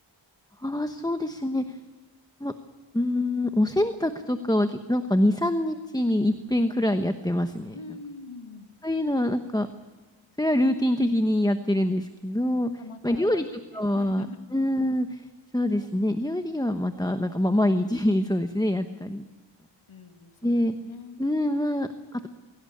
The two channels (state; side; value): normal; both; correlation 0.88